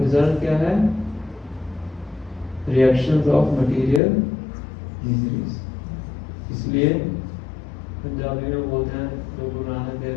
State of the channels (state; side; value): drops out; right; at 4.0 s